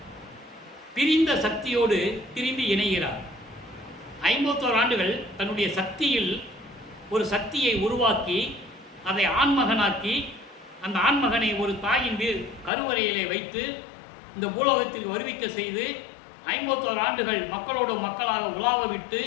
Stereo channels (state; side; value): drops out; right; at 12.7 s